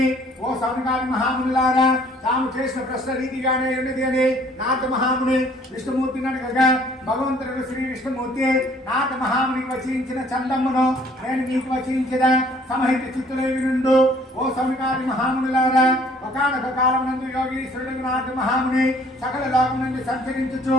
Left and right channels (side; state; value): both; normal; correlation 0.58